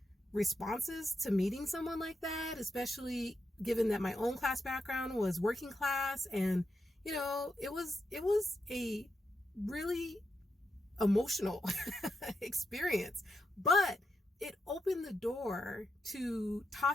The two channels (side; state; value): both; normal; correlation 0.85